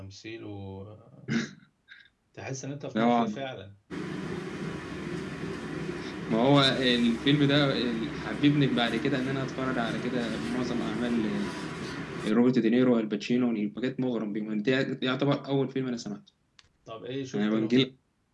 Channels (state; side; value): identical; both; correlation 1.00